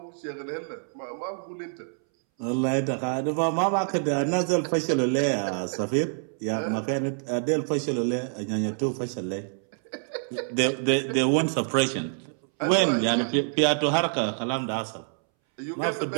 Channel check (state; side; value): silent; left; 60 dB below the other